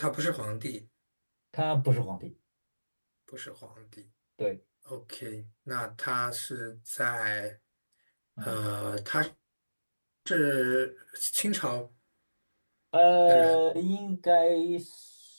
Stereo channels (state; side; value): inverted; both; correlation -1.00